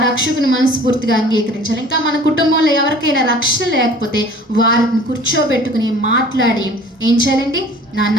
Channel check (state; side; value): normal; both; correlation 0.47